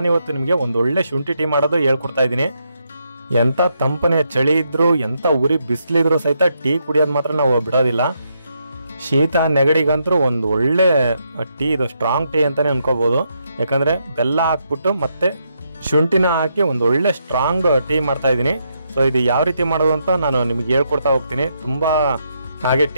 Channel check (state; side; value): inverted; both; correlation -0.79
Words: ನಿಮಗೆ ಒಂದು ಒಳ್ಳೆ ಶುಂಠಿ ಟೀ ಮಾಡೋದು ಹೇಳ್ಕೊಡ್ತಾ ಇದ್ದೀನಿ. ಎಂಥ ತಂಪನೆಯ ಚಳಿ ಇದ್ರೂ, ಎಂಥ ಉರಿ ಬಿಸಿಲಿದ್ರು ಸಹಿತ ಟೀ ಕುಡಿಯೋದು ಮಾತ್ರ ನಾವು ಬಿಡೋದಿಲ್ಲ. ಶೀತ ನೆಗಡಿಗಂತೂ ಒಂದು ಒಳ್ಳೆ ಟೀ, ಇದು ಸ್ಟ್ರಾಂಗ್ ಟೀ ಅಂತಲೇ ಅನ್ಕೋಬೋದು. ಯಾಕಂದರೆ ಬೆಲ್ಲ ಹಾಕ್ಬಿಟ್ಟು ಮತ್ತೆ ಶುಂಠಿನ ಹಾಕಿ ಒಂದು ಒಳ್ಳೆ ಸ್ಟ್ರಾಂಗ್ ಟೀ ಮಾಡ್ತಾ ಇದ್ದೀನಿ. ಸೊ ಇದು ಯಾವ ರೀತಿ ಮಾಡೋದು ಅಂತ ನಾನು ನಿಮಗೆ ಹೇಳ್ಕೊಡ್ತಾ ಹೋಗ್ತೀನಿ. ತುಂಬ ಹಾಗೆ